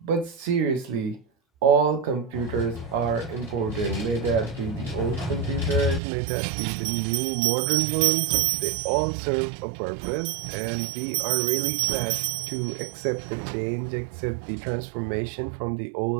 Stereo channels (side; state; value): left; drops out; at 6.0 s